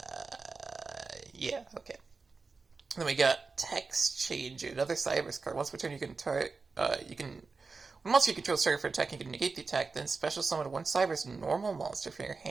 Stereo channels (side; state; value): left; quieter; 4.3 dB